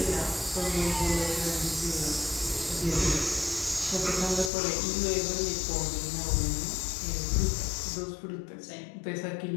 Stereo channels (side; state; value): right; drops out; at 4.5 s